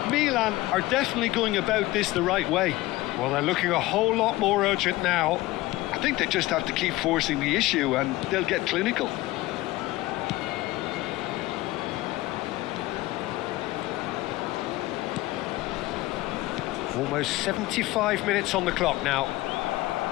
Milan are definitely going about this the right way. Well, they're looking a whole lot more urgent now. I think they just have to keep forcing the issue and they'll get clinical. Almost 75 minutes on the clock now.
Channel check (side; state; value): right; quieter; 18.5 dB